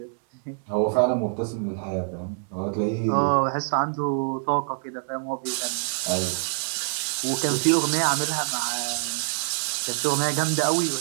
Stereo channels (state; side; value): silent; left; 61 dB below the other